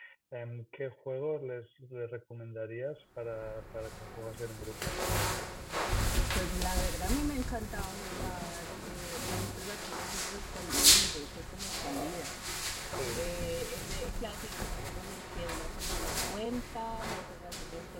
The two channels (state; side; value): identical; both; correlation 1.00